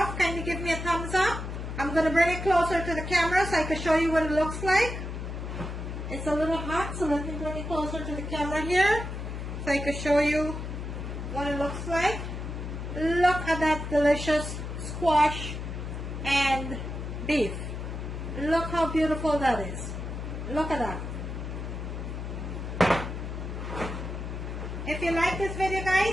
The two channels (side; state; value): left; noise; hum, 6 dB below the sound